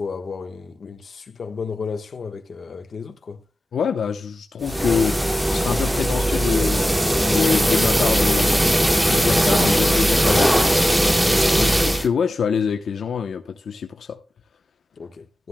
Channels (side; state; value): both; normal; correlation 0.93